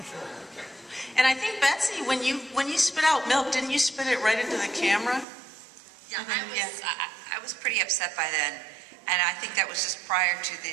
And I think, Betsy, when you spit out milk, didn't you spit it right into the camera? Yeah, I was pretty upset by then, and I think that was just prior to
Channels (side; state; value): left; drops out; at 5.2 s